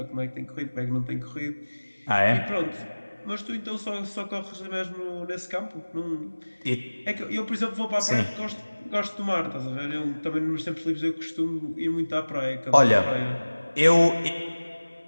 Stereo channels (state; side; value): inverted; both; correlation -1.00